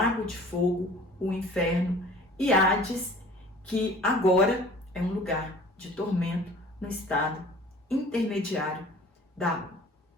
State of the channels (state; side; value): normal; both; correlation 0.47